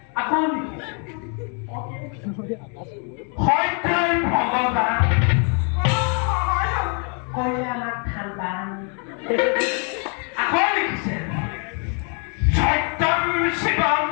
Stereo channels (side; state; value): right; quieter; 39.4 dB